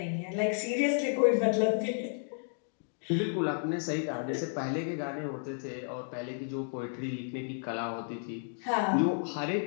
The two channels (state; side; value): silent; right; digital silence